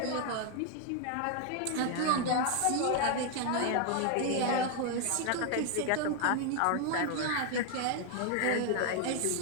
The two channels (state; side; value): different; both; correlation 0.00